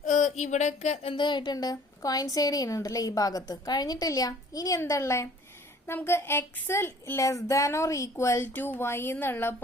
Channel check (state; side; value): normal; both; correlation 0.53